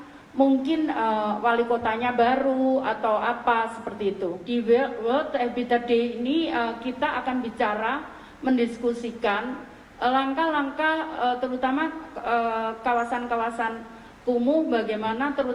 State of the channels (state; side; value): identical; both; correlation 1.00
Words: mungkin wali kotanya baru atau apa seperti itu. Di World Habitat Day ini kita akan bicara, mendiskusikan langkah-langkah terutama kawasan-kawasan kumuh bagaimana